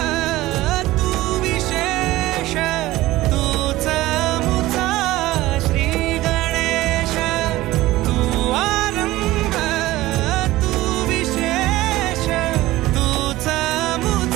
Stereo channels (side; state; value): left; quieter; 17.3 dB